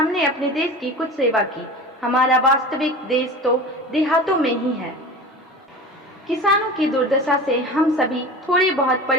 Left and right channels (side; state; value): both; normal; correlation 0.34